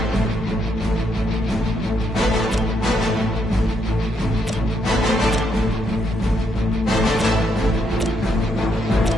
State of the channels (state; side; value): normal; both; correlation 0.77